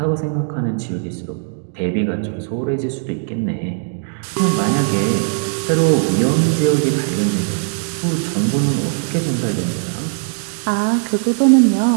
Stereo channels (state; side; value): silent; left; digital silence